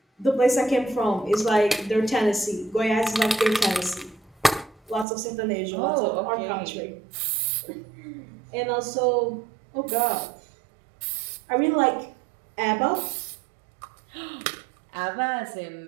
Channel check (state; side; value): drops out; left; at 5.1 s